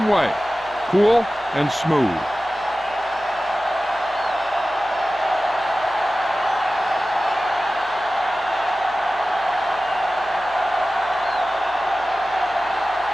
way. Cool and smooth.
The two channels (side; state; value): left; noise; hum, 26 dB below the sound